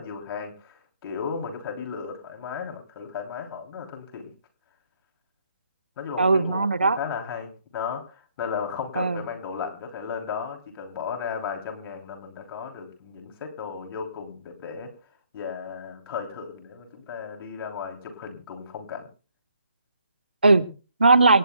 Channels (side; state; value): both; inverted; correlation -0.69